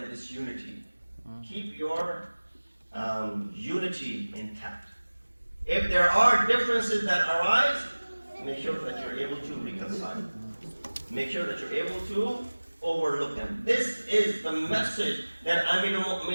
disunity. Keep your unity intact. If there are differences that arise, make sure that you're able to reconcile. Make sure that you're able to overlook them. This is the message that Amir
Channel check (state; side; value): inverted; both; correlation -1.00